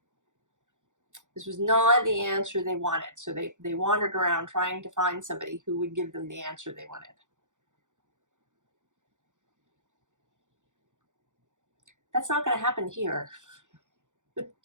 This was not the answer they wanted. So they wandered around trying to find somebody who would give them the answer they wanted. That's not going to happen here.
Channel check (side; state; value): left; late; 0.86 ms